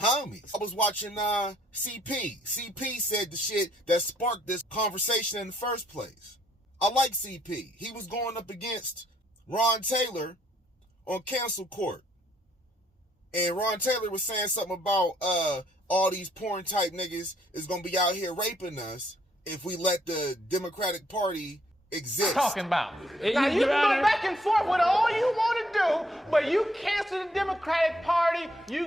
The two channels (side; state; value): both; normal; correlation 0.68